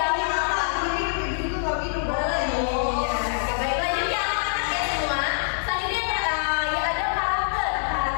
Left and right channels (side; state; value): right; silent; digital silence